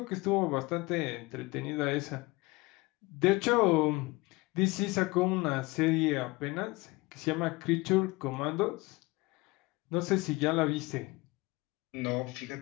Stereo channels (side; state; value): right; quieter; 22.8 dB